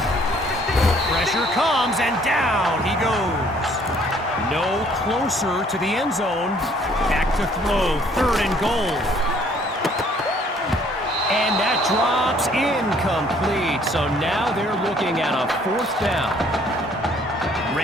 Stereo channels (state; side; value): normal; both; correlation 0.61